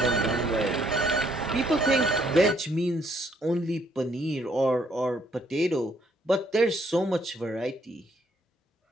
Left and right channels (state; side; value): normal; both; correlation 0.68